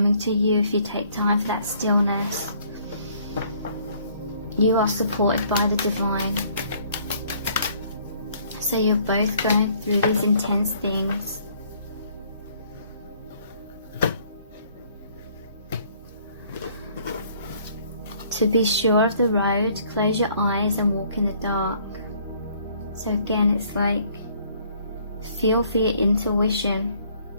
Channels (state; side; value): inverted; both; correlation -0.61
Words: to you if you take time for that stillness. You are supported by the divine. So you're both going through these intense things. To be sure of the road, close your eyes and walk in the dark. So again, it's like, feel for your intuition.